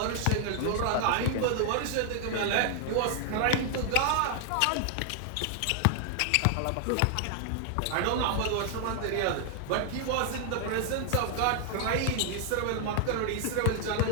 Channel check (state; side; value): different; both; correlation 0.00